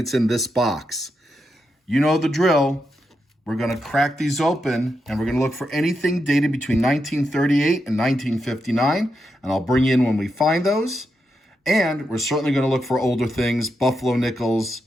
in this box. You know the drill. We're going to crack these open, and we're going to look for anything dated between 1938 and 1959, and I'll bring you in when we find those. And we're certainly going to look for older things, Buffalo nickels.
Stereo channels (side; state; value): both; normal; correlation 0.85